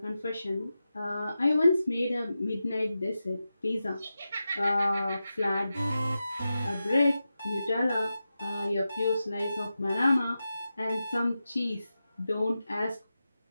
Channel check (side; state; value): both; inverted; correlation -0.91